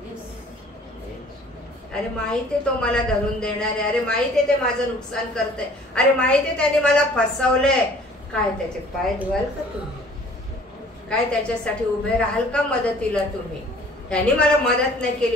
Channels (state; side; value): normal; both; correlation 0.52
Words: अरे माहिती आहे तो मला धरून देणार आहे, अरे माहिती आहे ते माझं नुकसान करतंय, अरे माहिती आहे त्याने मला फसवलंय. काय त्याचे पाय धुवाल का तुम्ही? काय त्याच्यासाठी उभे राहाल का मदतीला तुम्ही? त्यांनी मला मदत नाही